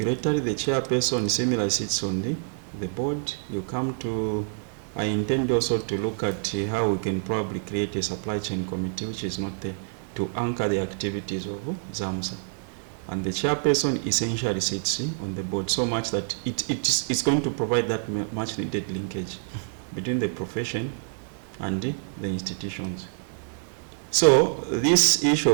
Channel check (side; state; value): left; silent; digital silence